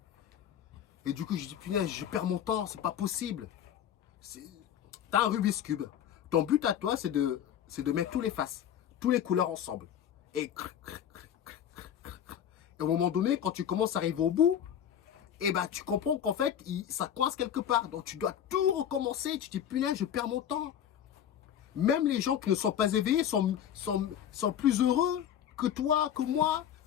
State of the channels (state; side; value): quieter; right; 9.7 dB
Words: Et du coup, je dis, punaise, je perds mon temps, c'est pas possible. T'as un Rubik's Cube. Ton but à toi, c'est de mettre tous les faces, tous les couleurs ensemble. Et au moment donné, quand tu commences à arriver au bout, et ben, tu comprends qu'en fait, ça coince quelque part. Donc, tu dois tout recommencer. Tu te dis, punaise, je perds mon temps. Même les gens qui ne sont pas éveillés sont plus heureux que toi, que moi,